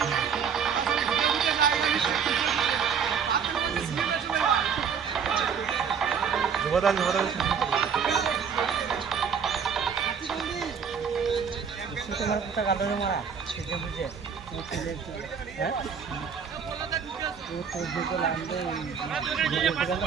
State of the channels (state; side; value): quieter; left; 6.8 dB